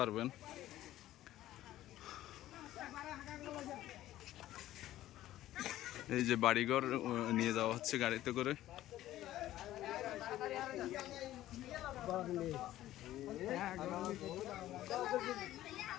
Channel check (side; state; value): right; quieter; 14.2 dB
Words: এই যে বাড়িঘর নিয়ে যাওয়া হচ্ছে গাড়িতে করে।